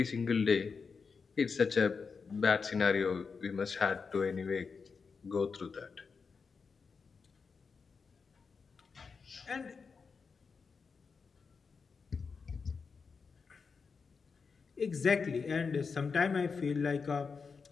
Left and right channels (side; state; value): right; quieter; 5.2 dB